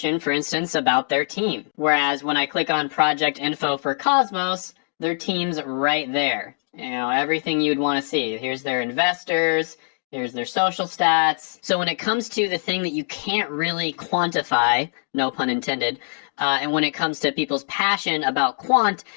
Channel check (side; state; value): right; silent; digital silence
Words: for instance, about their team. Whereas when I click on project info for Cosmos, their team's right there. You know, everything you'd want to see. Here's their investors, here's their social stats. So when it comes to the thing that you can't really quantify, no pun intended, and when it comes to people's passion about Quant,